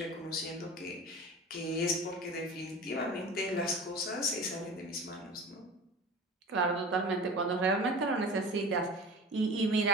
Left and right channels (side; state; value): both; normal; correlation 0.37